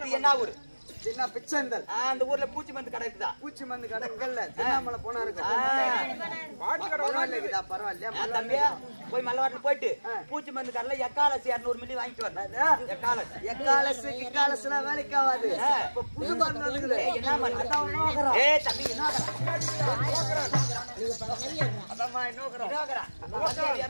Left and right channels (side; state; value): both; inverted; correlation -1.00